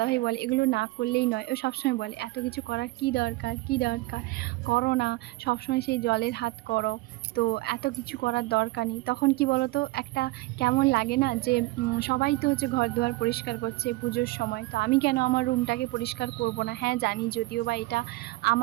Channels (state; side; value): quieter; left; 20.5 dB